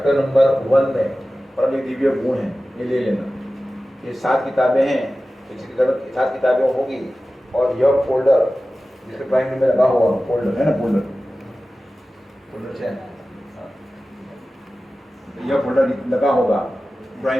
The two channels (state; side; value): normal; both; correlation 0.95